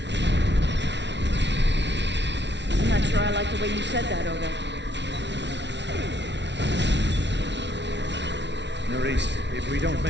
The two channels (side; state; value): left; late; 0.51 ms